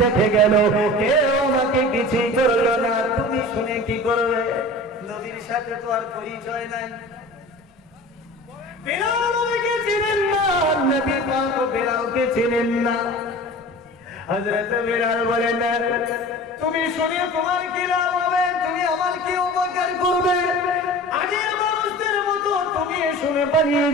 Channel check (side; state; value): both; normal; correlation 0.38